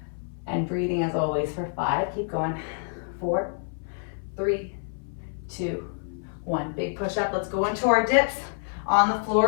And breathing as always for 5, keep going. 4, 3, 2, 1. Big push up, let's go into our dips on the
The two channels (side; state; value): right; silent; 58 dB below the other